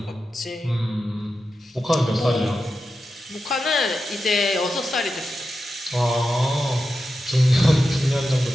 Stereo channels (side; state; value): both; normal; correlation 0.90